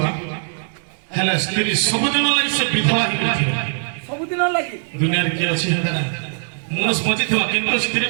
ହେଲେ ସ୍ତ୍ରୀ ସବୁଦିନ ଲାଗି ସେ ବିଧବା ହେଇଥିବ ସବୁଦିନ ଲାଗି ଦୁନିଆରେ କିଏ ଅଛି ମଣିଷ ବଞ୍ଚିଥିବା କିନ୍ତୁ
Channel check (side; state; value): left; silent; 65 dB below the other